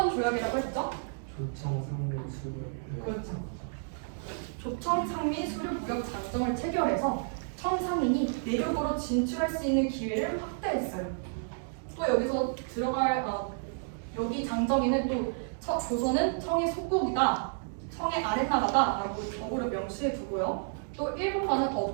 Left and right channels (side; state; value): left; silent; digital silence